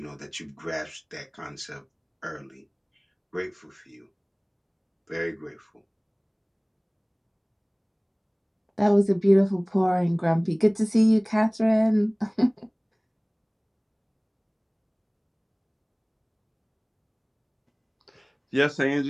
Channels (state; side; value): identical; both; correlation 1.00